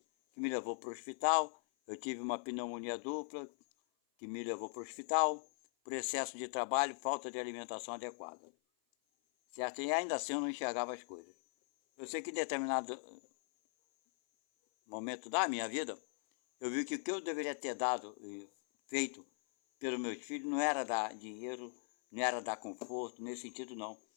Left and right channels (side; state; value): right; silent; 51 dB below the other